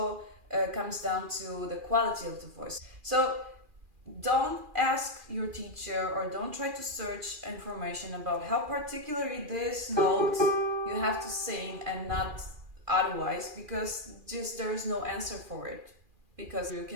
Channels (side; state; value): left; late; 2.4 ms